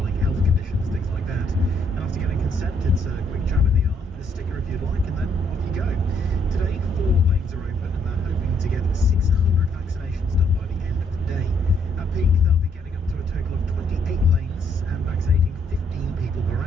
health conditions, things like that. And after getting consent, it's a quick jab in the arm, a sticker if you'd like, and then off you go. Today, 4 lanes are open, and they're hoping to get 600 vaccinations done by the end of the day. At peak, they'll be getting up to a total of 28 lanes and vaccinating 15 people per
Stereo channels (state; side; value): normal; both; correlation 0.70